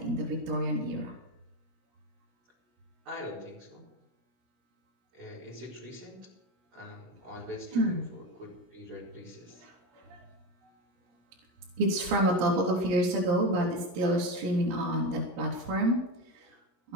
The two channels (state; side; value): late; left; 16 ms